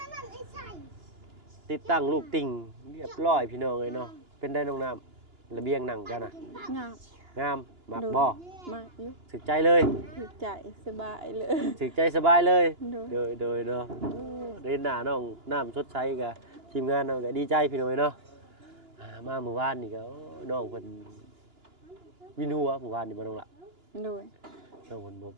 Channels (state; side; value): late; left; 2.9 ms